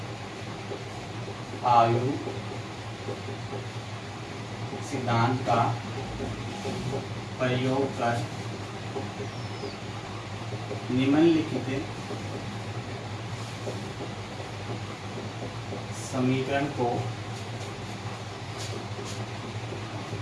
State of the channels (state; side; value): identical; both; correlation 1.00